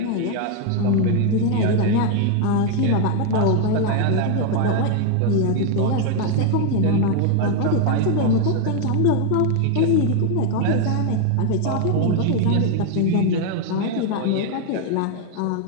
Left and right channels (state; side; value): different; both; correlation 0.01